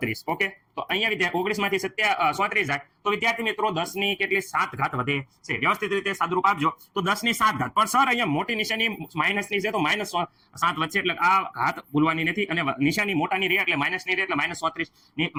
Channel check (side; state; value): both; identical; correlation 1.00